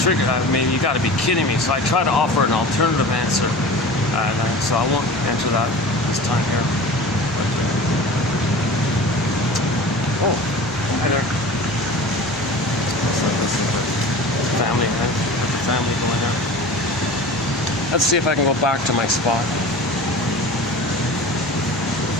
I mean, you got to be kidding me. So I try to offer an alternative answer. So I won't answer that this time here. But, oh, hi there. This is the family. Got the family going there. Let's see if I can go back to my spot.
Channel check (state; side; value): normal; both; correlation 0.37